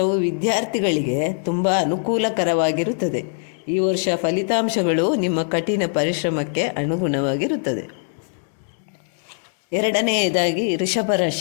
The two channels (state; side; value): silent; right; digital silence